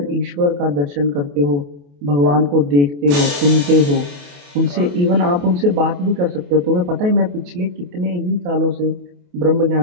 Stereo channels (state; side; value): late; left; 28 ms